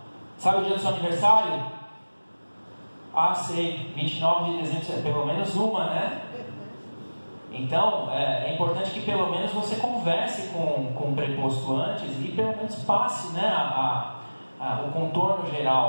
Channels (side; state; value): both; inverted; correlation -1.00